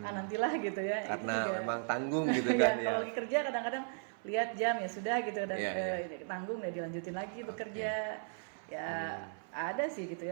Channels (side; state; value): left; silent; 54 dB below the other